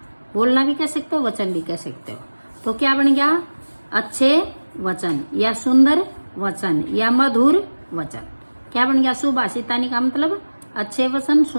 बोलना भी कह सकते हो, वचन भी कह सकते हो। तो क्या बन गया? अच्छे वचन या सुंदर वचन या मधुर वचन। क्या बन गया? सुभाषितानी का मतलब अच्छे वचन,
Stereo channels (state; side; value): inverted; both; correlation -1.00